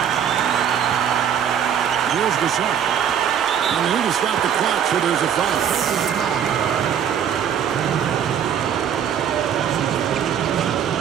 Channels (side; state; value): left; quieter; 8.6 dB